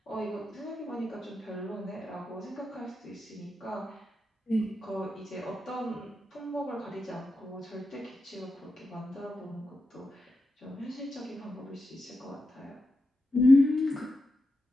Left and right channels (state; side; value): normal; both; correlation 0.88